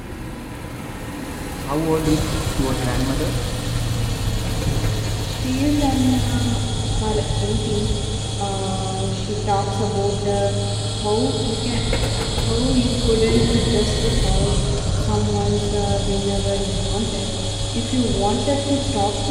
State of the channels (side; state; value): both; identical; correlation 1.00